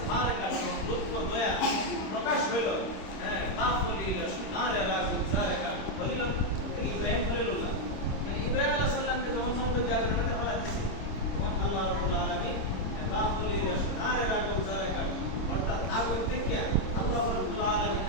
কাদ, লুৎফ দয়া প্রকাশ হলো, হ্যাঁ, বাফলিল শনার রাগুল জারকাত। খলিল ইব্রাহিম খলিলুল্লাহ, ইব্রাহিম আলাইহিস সালামকে যখন সমুদ্রের জায়গায় নামাতে ফেলা দিয়েছে, তখন আল্লাহ রাব্বুল আলামিন বাফলিল শনার রাগুল জারকাত, অর্থাৎ আগুন থেকে আল্লাহ রাব্বুল আলামিন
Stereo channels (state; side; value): late; right; 26 ms